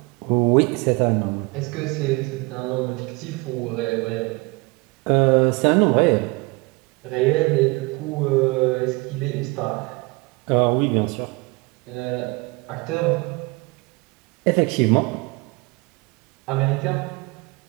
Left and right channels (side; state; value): left; quieter; 26.2 dB